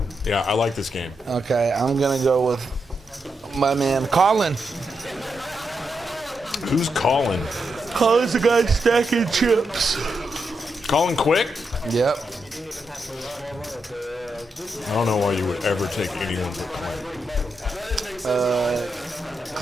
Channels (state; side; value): normal; both; correlation 0.84